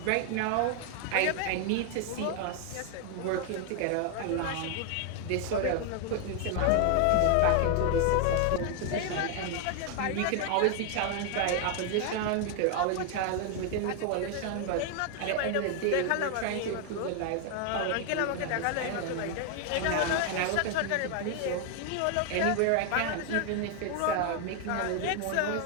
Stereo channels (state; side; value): different; both; correlation 0.01